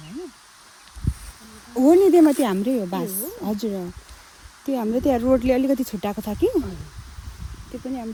हो नि त्यहाँ माथि हाम्रै हो बाँस हजुर त्यो हाम्रो त्यहाँ रोडले अलिकति छुट्याएको छ कि त्यो पनि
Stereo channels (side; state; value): both; identical; correlation 1.00